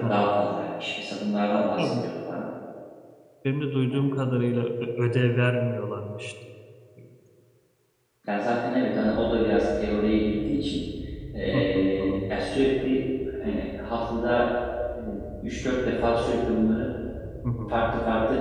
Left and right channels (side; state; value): both; identical; correlation 1.00